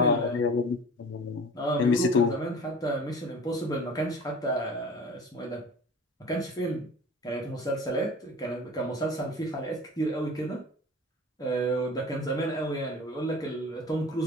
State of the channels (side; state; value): both; normal; correlation 0.40